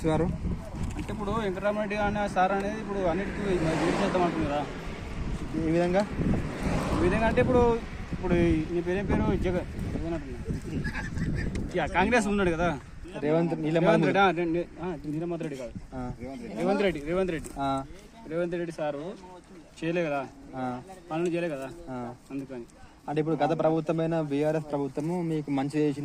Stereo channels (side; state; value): both; identical; correlation 1.00